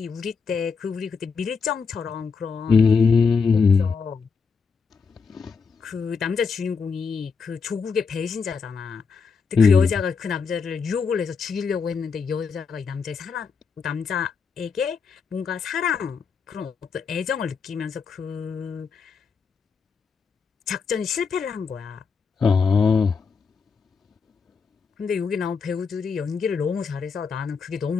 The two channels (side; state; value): right; quieter; 5.4 dB